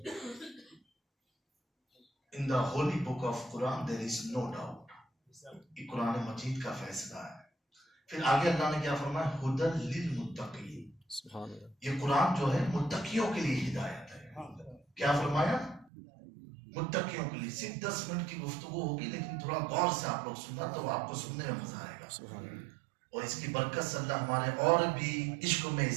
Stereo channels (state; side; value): drops out; left; at 15.9 s